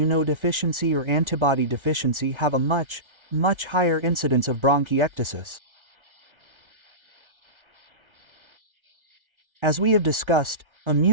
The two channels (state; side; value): late; left; 1.3 ms